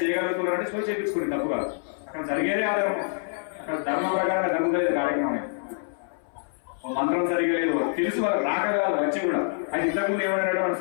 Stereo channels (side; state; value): right; silent; 61 dB below the other